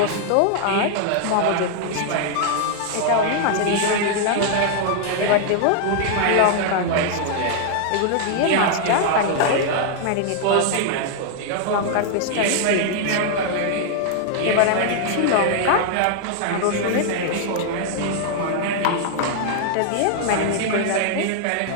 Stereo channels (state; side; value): different; both; correlation -0.01